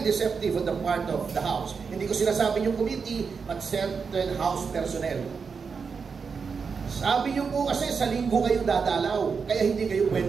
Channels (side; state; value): left; quieter; 5.6 dB